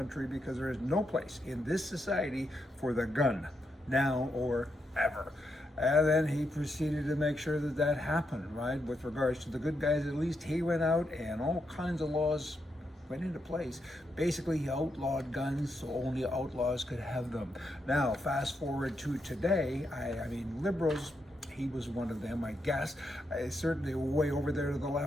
because there is no place in this society for the gun, now or ever. And then he proceeded to make sure that that happened, right? With regards to the good guys, at least he went out and all kinds of laws went into place. Basically, he outlawed guns, so only outlaws could have them. Now, fast forward to today, I mean, liberals, he was one of them, I guess. Certainly way over there to the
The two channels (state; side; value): normal; both; correlation 0.82